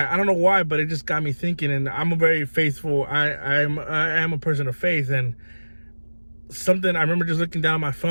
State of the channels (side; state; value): both; inverted; correlation -1.00